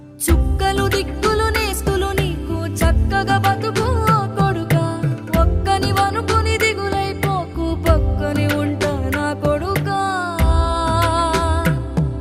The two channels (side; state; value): both; identical; correlation 1.00